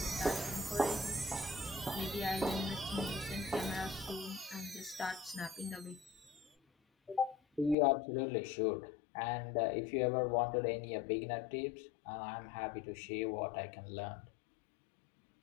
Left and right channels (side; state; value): right; drops out; at 7.8 s